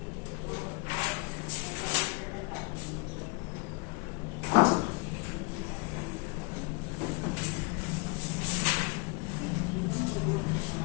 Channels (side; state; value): right; quieter; 27.9 dB